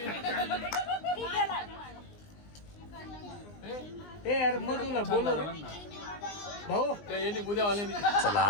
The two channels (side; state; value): right; late; 20 ms